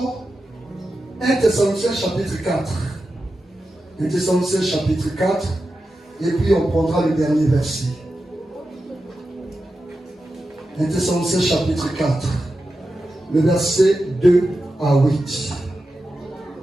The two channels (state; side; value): normal; both; correlation 0.91